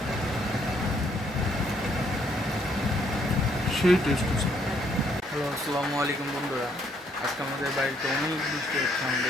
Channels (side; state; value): both; normal; correlation 0.69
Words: সেই টেস্ট হচ্ছে। হ্যালো আসসালামু আলাইকুম বন্ধুরা, আজকে আমাদের বাড়িতে অনেক বৃষ্টি হচ্ছে।